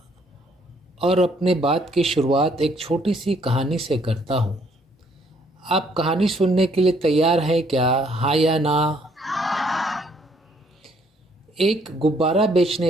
और अपने बात की शुरुआत एक छोटी सी कहानी से करता हूँ। आप कहानी सुनने के लिए तैयार हैं क्या, हाँ या ना? एक गुब्बारा बेचने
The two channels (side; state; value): both; normal; correlation 0.66